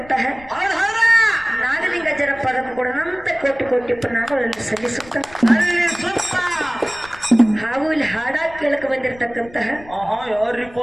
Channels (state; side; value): noise; left; rumble, 21 dB below the sound